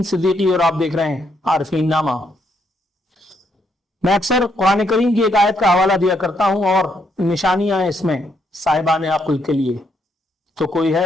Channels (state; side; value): normal; both; correlation 0.75